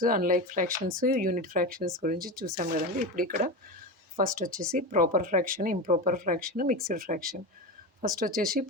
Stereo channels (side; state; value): both; normal; correlation 0.22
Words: unlike fractions, unit fractions గురించి చూసాం కదండీ. ఇప్పుడు ఇక్కడ ఫస్ట్ వచ్చేసి proper fraction, improper fraction, mixed fraction. First వచ్చేసి